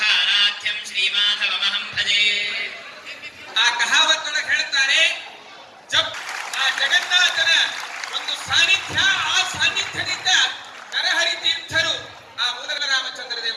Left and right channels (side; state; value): both; identical; correlation 1.00